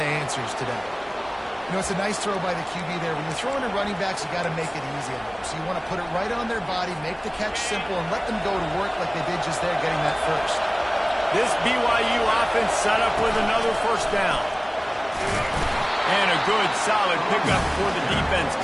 answers today. You know, it's a nice throw by the QB there. When you're throwing to running backs, you got to make it easy on them. So you want to put it right on their body, make the catch simple, and let them go to work like they did just there, getting that first. This BYU offense set up with another first down. And a good, solid pickup before the defense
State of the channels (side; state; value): both; identical; correlation 1.00